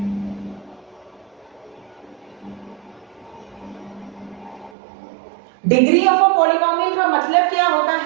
Degree of a polynomial का मतलब क्या होता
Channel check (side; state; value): left; drops out; at 4.8 s